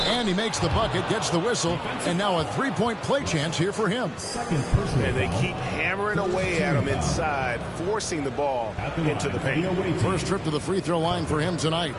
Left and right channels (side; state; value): both; identical; correlation 1.00